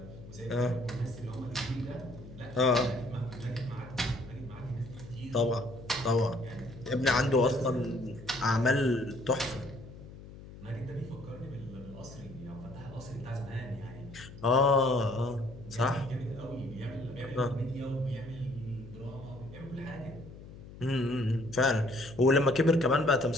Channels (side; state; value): left; noise; hum, 16 dB below the sound